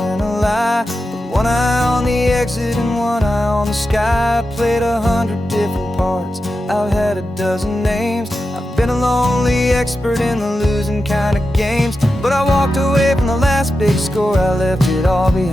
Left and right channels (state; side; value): normal; both; correlation 0.90